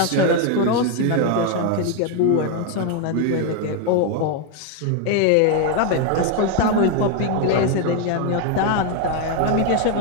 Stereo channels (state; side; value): different; both; correlation 0.01